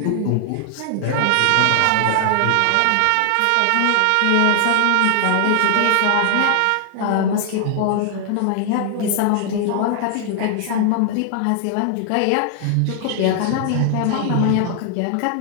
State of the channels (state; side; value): different; both; correlation 0.00